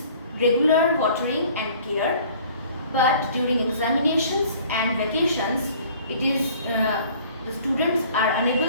regular watering and care. But during examinations and vacations, it is the students are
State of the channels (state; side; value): inverted; both; correlation -0.52